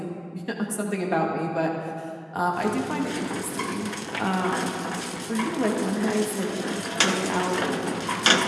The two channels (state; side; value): identical; both; correlation 1.00